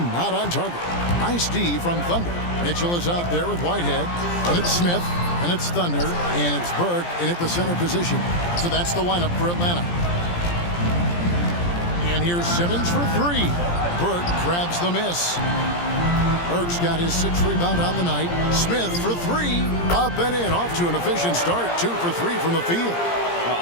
not on target. Nice D from Thunder. Mitchell is out there with Whitehead. And it's Smith. And it's Thunder. And it's Burke in at the center position. So that's the lineup for Atlanta. And here's Simmons for three. Burke grabs the miss. Burke's got his 6th rebound on the night. Smith for three. Up and in. Off to an efficient start. 2 for 3 from the field.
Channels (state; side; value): late; right; 17 ms